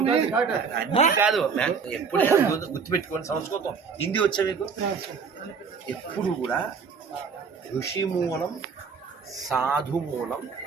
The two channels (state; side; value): quieter; left; 5.7 dB